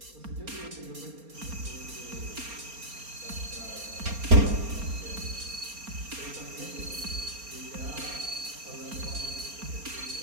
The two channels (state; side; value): late; left; 4.3 ms